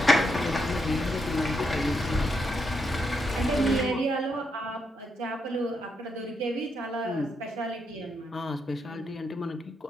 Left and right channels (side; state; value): both; normal; correlation 0.80